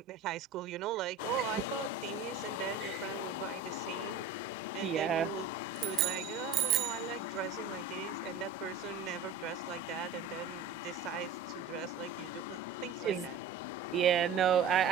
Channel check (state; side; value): quieter; left; 4.8 dB